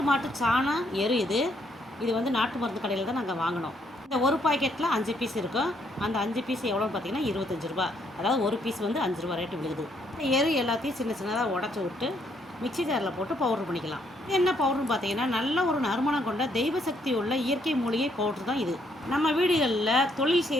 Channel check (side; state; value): both; normal; correlation 0.71